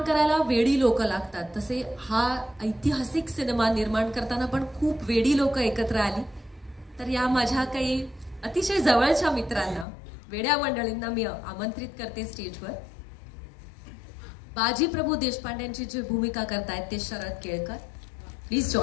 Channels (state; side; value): drops out; right; at 9.9 s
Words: करायला वेडी लोक लागतात, तसे हा ऐतिहासिक सिनेमा निर्माण करताना पण खूप वेडी लोक एकत्र आली. तर या माझ्या काही अतिशय जवळच्या मित्रांना, वेड्या मंडळींना मी आमंत्रित करते स्टेजवर. बाजी प्रभू देशपांडेंची जी भूमिका करतायत ते Sharad Kelkar. Please